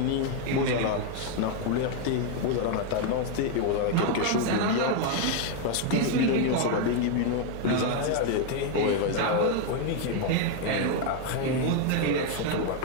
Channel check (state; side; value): different; both; correlation 0.01